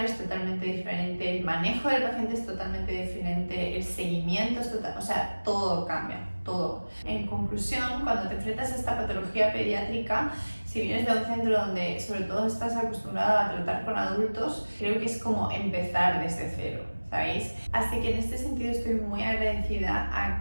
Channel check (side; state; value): both; inverted; correlation -1.00